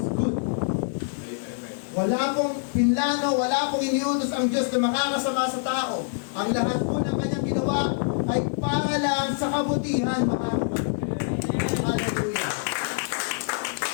good. Wala pong pinlano, wala pong iniutos ang Diyos na makakasama sa tao. Ang lahat po ng kanyang ginawa ay para lang sa kabutihan, mga kapatid. Hallelujah.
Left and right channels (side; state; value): right; silent; 60 dB below the other